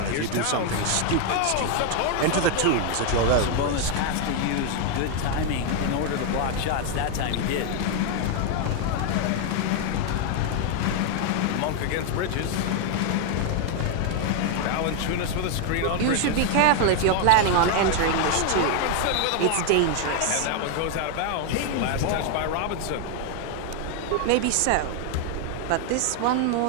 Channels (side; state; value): both; different; correlation 0.00